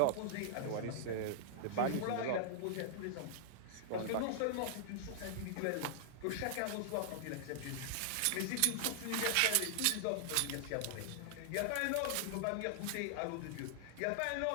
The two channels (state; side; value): different; both; correlation -0.01